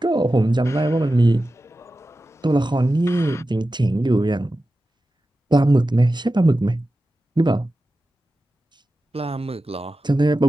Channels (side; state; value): both; normal; correlation 0.93